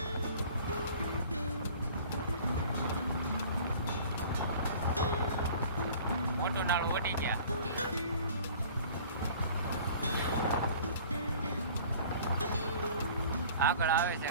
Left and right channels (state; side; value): inverted; both; correlation -0.47